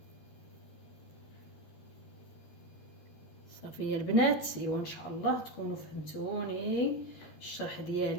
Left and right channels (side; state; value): right; late; 12 ms